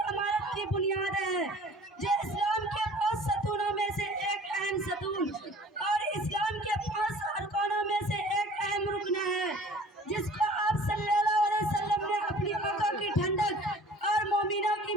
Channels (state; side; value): normal; both; correlation 0.48